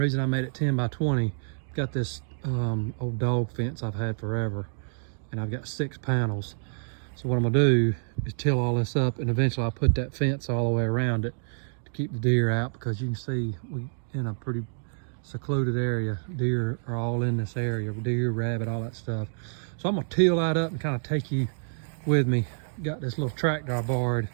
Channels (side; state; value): left; silent; digital silence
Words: I made it 10 by 20, I've got this old dog fence I've had forever, and I've got 6 panels. So what I'm gonna do is till all this up, and eventually I'll put that fence all the way around it to keep the deer out, because you can see we in a pretty secluded area. Deer are all in this area, deer, rabbit, all that stuff. So I'm gonna till that up and kind of take you with me. Got this little tractor I borrowed